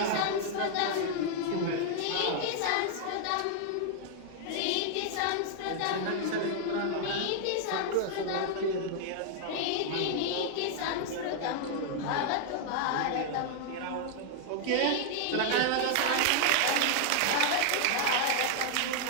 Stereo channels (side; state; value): both; different; correlation -0.01